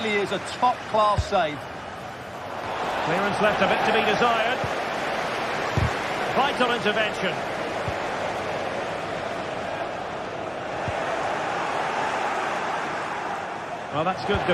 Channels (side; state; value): both; identical; correlation 1.00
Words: is a top-class save. Clearance left a bit to be desired. Vital intervention. Well, that's good